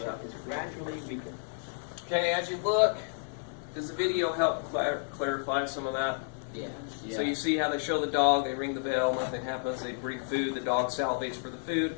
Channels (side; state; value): right; silent; 57 dB below the other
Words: is gradually weakened. Okay, as you look, does the video help clarify some of that? Yeah. So you see how they show the dog, they ring the bell, nothing happens, they bring food, the dog salivates for the food,